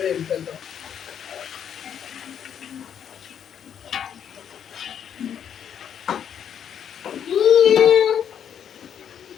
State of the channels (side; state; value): right; quieter; 8.7 dB